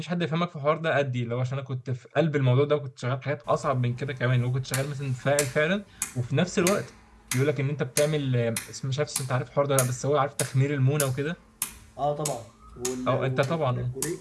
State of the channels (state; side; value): identical; both; correlation 1.00